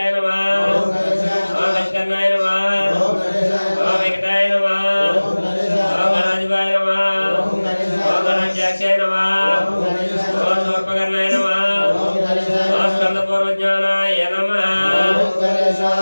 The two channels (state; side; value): inverted; both; correlation -1.00